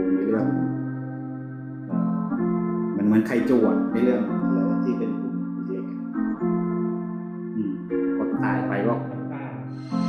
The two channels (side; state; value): both; identical; correlation 1.00